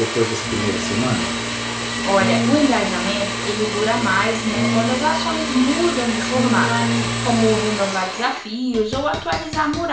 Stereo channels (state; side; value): identical; both; correlation 1.00